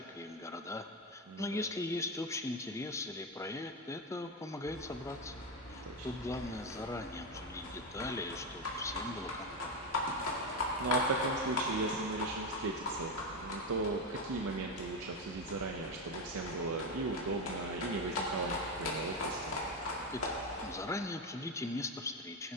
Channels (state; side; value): normal; both; correlation 0.12